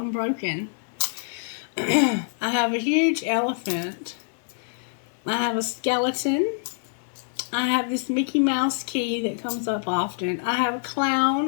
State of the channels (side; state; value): right; silent; 61 dB below the other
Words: I have a huge elephant. I have a skeleton. I have this Mickey Mouse key that comes up often. I have a